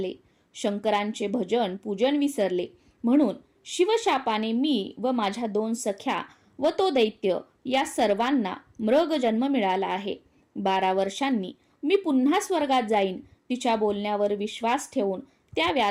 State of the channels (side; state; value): both; identical; correlation 1.00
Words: शंकरांचे भजन पूजन विसरले, म्हणून शिवशापाने मी व माझ्या 2 सख्या व तो दैत्य या सर्वांना मृग जन्म मिळाला आहे. 12 वर्षांनी मी पुन्हा स्वर्गात जाईन. तिच्या बोलण्यावर विश्वास ठेवून त्या